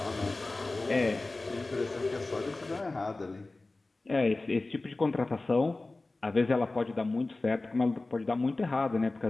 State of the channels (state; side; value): quieter; right; 3.2 dB